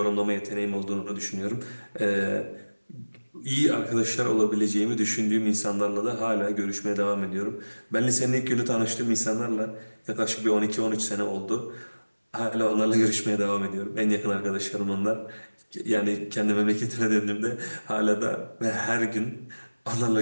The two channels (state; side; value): inverted; both; correlation -1.00